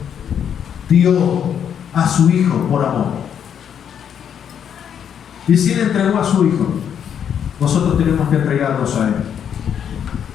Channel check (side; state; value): right; quieter; 8.5 dB